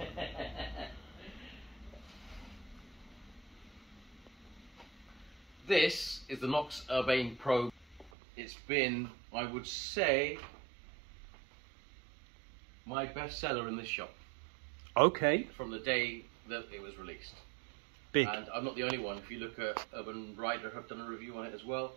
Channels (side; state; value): left; drops out; at 8.1 s